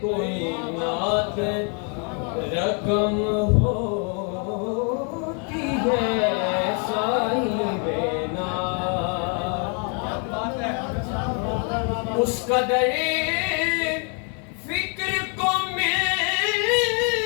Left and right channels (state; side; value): quieter; right; 39.0 dB